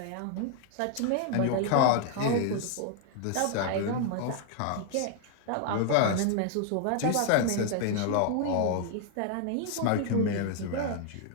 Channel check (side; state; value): both; different; correlation 0.00